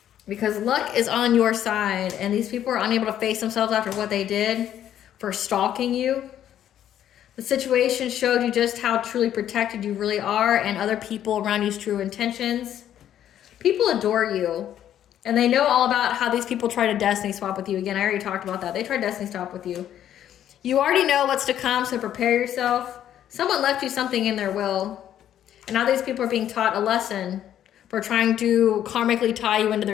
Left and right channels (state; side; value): quieter; right; 10.8 dB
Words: Because luck is on your side, and these people are unable to face themselves after what they did for stalking you. The situation showed you just how truly protected you really are and other people around you's true intentions. People adore you, and they know all about how these people try to destiny swap with you. Again, I already talked about that. They try destiny swap with you. You already know what's to come, so prepare yourself. Someone left you something in their will, and now these people are being taught a lesson for trying to karmically tie you into